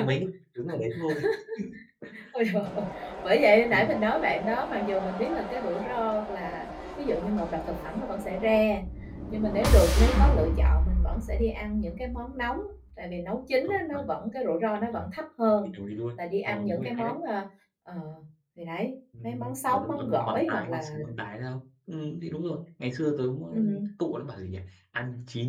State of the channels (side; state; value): both; identical; correlation 1.00